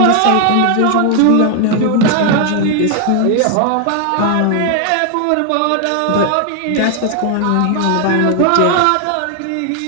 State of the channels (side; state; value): both; different; correlation 0.00